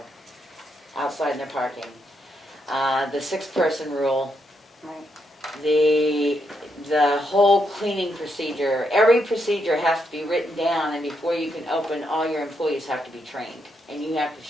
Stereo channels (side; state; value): both; normal; correlation 0.80